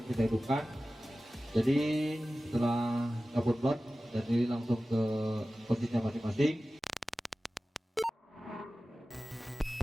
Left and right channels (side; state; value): both; normal; correlation 0.96